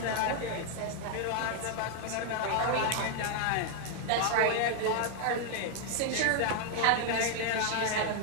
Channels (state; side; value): different; both; correlation 0.00